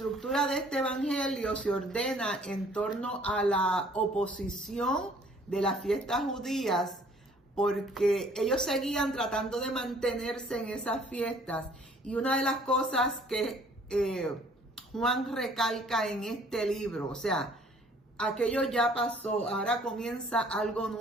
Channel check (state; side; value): normal; both; correlation 0.57